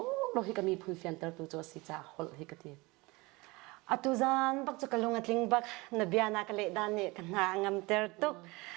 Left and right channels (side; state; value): left; quieter; 23.8 dB